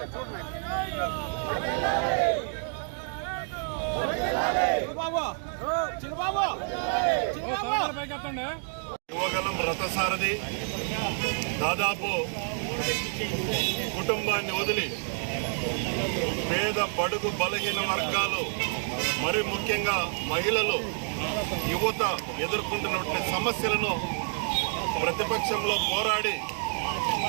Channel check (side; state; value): left; silent; 55 dB below the other